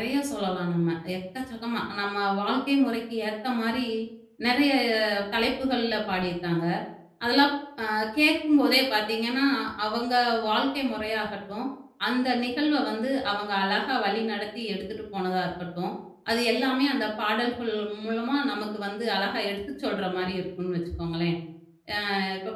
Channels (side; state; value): both; identical; correlation 1.00